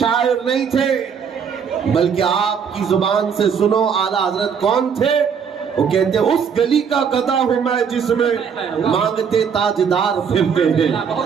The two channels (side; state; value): left; quieter; 6.8 dB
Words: نہیں تھے، بلکہ آپ کی زبان سے سنو اعلیٰ حضرت کون تھے؟ وہ کہتے اس گلی کا گدھا ہوں میں جس میں مانگتے تاجدار پھرتے ہیں،